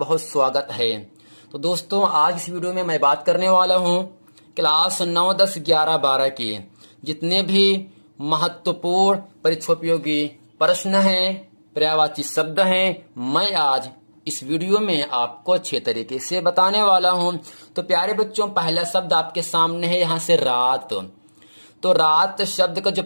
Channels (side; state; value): both; inverted; correlation -1.00